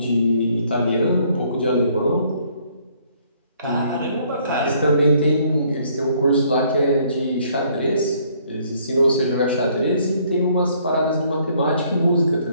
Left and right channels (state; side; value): inverted; both; correlation -0.64